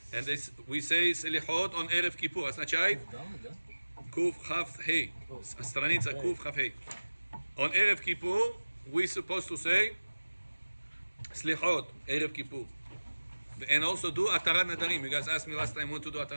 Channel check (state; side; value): inverted; both; correlation -1.00